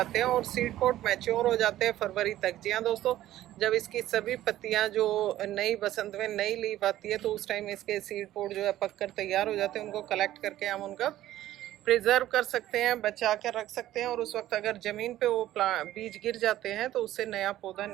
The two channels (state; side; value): quieter; left; 13.9 dB